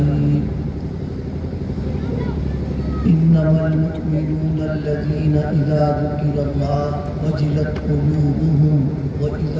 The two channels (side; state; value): both; identical; correlation 1.00